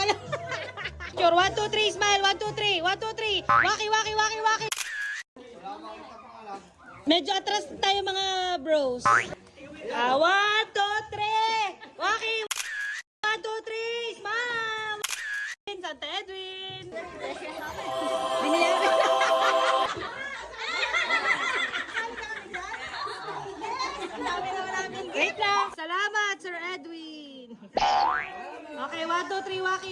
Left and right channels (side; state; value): both; identical; correlation 1.00